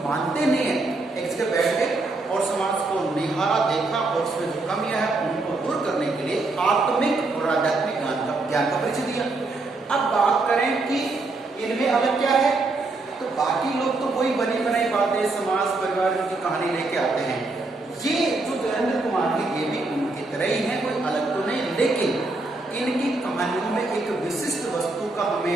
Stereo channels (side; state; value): left; quieter; 3.3 dB